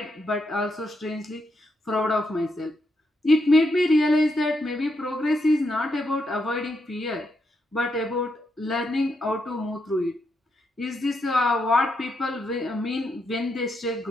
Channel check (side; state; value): both; normal; correlation 0.81